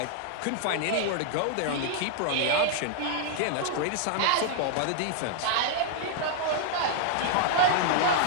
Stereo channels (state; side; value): different; both; correlation -0.01